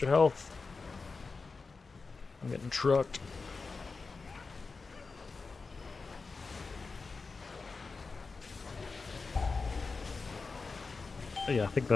health. I'm getting trucked. But yeah, I think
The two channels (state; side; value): quieter; right; 4.3 dB